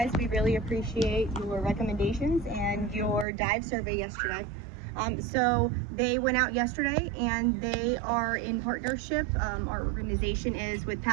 We really appreciate your recommendations and your dive survey yesterday. So they went out yesterday and they are in partnership. Our organization is with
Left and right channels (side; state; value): left; drops out; at 3.2 s